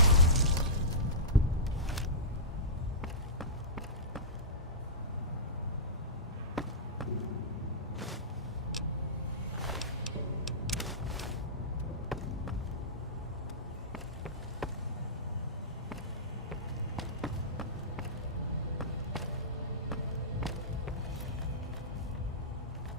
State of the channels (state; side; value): normal; both; correlation -0.20